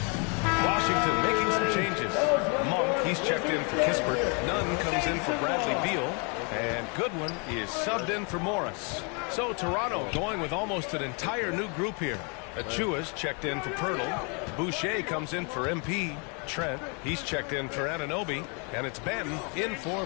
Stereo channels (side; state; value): right; quieter; 34.8 dB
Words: Washington making some changes. Monk, he's checked in for Kispert. Nunn comes in for Bradley Beal. And Goodwin is subbed in for Morris. So Toronto going with almost an entire new group here. Achua's checked in for Pirtle. Boucher comes in for MP. Trent, he's checked in for Anunoby. And it's Benton in for